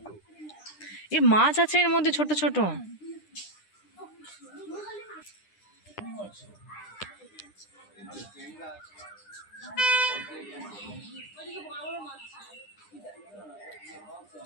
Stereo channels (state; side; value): late; right; 9.9 ms